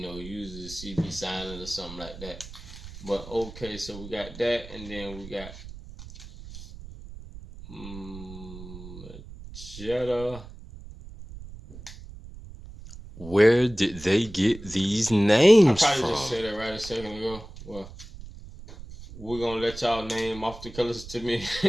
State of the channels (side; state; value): right; noise; rumble, 15 dB below the sound